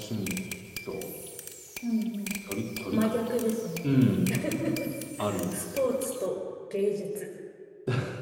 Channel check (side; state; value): both; identical; correlation 1.00